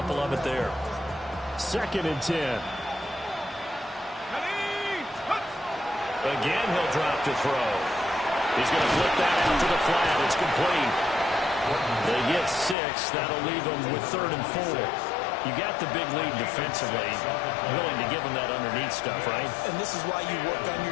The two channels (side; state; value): right; drops out; at 12.8 s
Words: of it there. 2nd and 10. Again, he'll drop to throw. He's going to flip that out to the flat. It's complete. They get 6. That'll leave them with 3rd and 4. You got the big lead defensively. Willing to give them that underneath stuff, right? And this is why you work on your